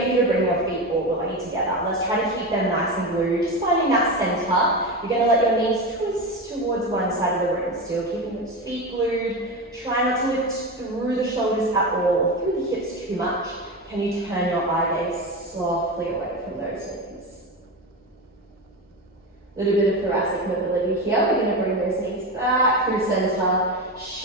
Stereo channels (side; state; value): both; normal; correlation 0.20